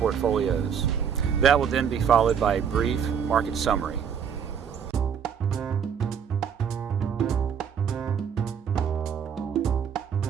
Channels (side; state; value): left; quieter; 7.6 dB